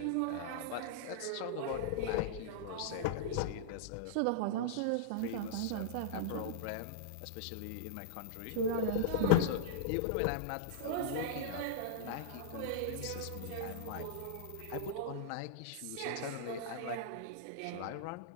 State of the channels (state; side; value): different; both; correlation -0.02